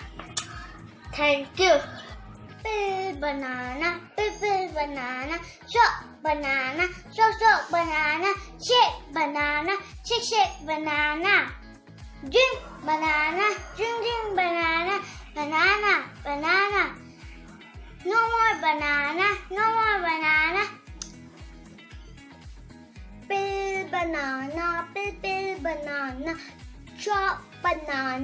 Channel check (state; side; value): identical; both; correlation 1.00